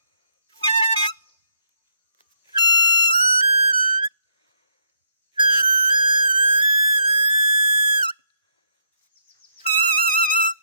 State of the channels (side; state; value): both; inverted; correlation -0.73